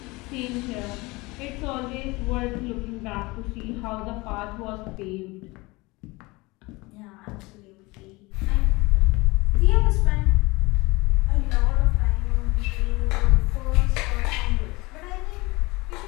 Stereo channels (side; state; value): right; quieter; 23.4 dB